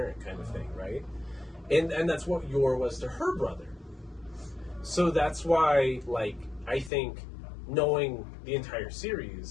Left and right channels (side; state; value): right; drops out; at 6.9 s